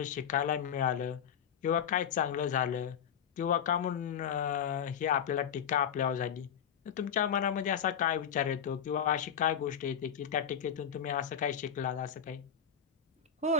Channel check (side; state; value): right; quieter; 8.0 dB